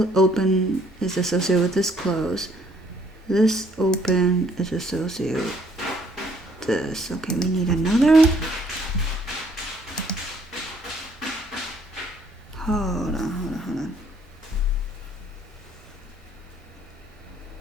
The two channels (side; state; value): both; normal; correlation 0.64